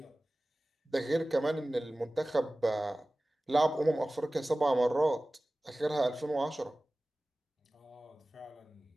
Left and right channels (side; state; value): both; normal; correlation 0.97